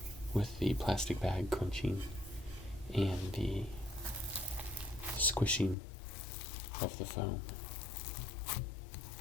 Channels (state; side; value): drops out; right; at 5.8 s